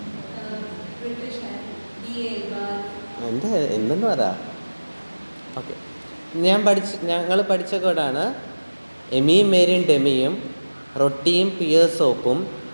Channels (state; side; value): inverted; both; correlation -1.00